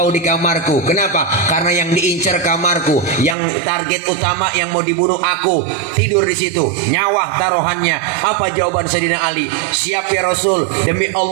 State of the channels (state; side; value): drops out; left; at 3.4 s